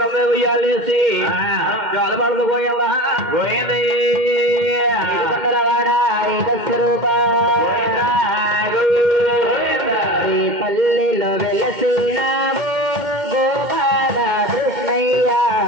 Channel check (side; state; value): left; late; 2.1 ms